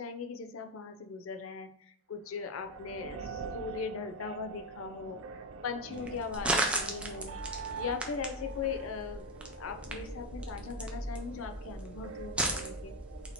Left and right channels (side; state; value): both; normal; correlation 0.08